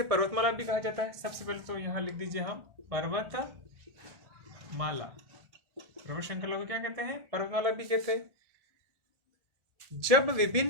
पर्वतमाला भी कहा जाता है। सबसे पहले तो यहां लिख दीजिए हम पर्वतमाला। पर्वत श्रृंखला को क्या कहते हैं? पर्वतमाला भी कहते हैं। जब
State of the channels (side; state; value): left; late; 1.4 ms